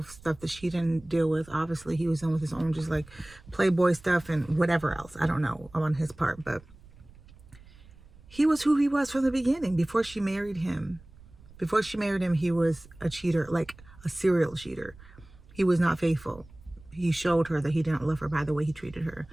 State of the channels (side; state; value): right; noise; rumble, 23 dB below the sound